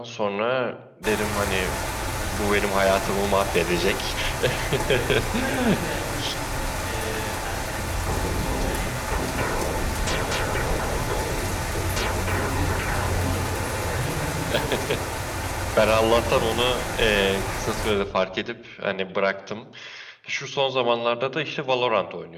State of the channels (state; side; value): identical; both; correlation 1.00